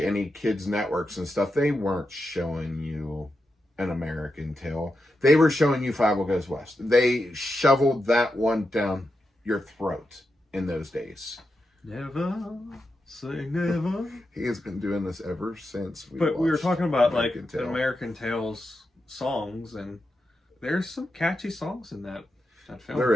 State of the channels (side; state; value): both; normal; correlation 0.88